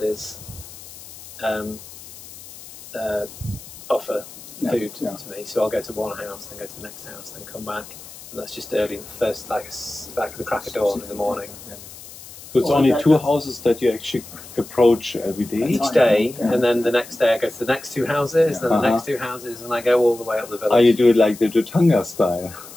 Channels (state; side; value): noise; left; hiss, 17 dB below the sound